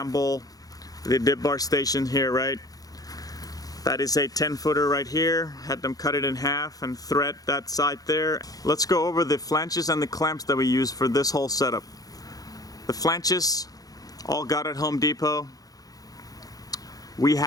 the dip bar station here, right? That is a 10-footer right here. Had them cut it in half and thread that side there. Let's go over the flanges and the clamps that we use for this whole setup. The flanges, all got at Home Depot. We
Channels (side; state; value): right; late; 0.18 ms